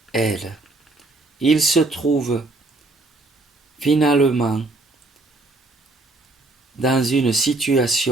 elle, ils se trouvent finalement dans une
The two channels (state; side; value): quieter; left; 3.0 dB